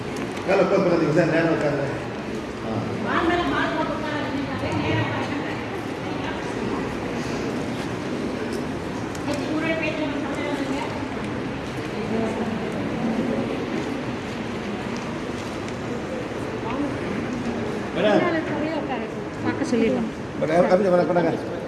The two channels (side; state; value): both; identical; correlation 1.00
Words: காலை க்ளோஸ் பண்ணாதீங்க சார். நேரம் உட்காந்து சொல்லிடலாம்.